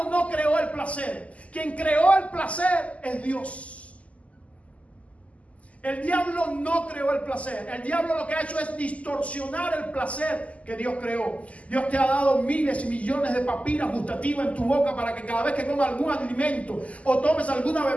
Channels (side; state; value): right; late; 0.067 ms